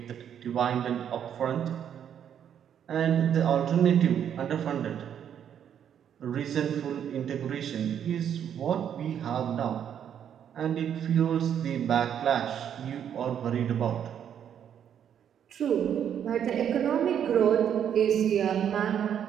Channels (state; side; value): quieter; left; 9.0 dB